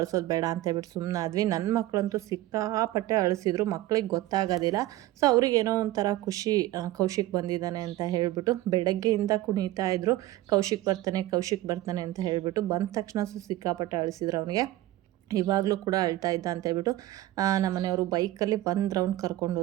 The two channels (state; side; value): quieter; left; 16.0 dB